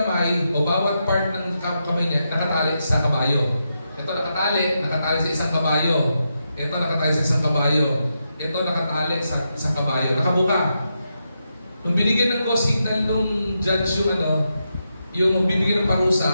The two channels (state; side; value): inverted; both; correlation -0.85